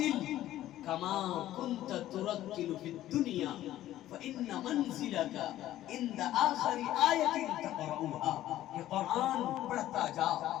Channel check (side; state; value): right; quieter; 13.7 dB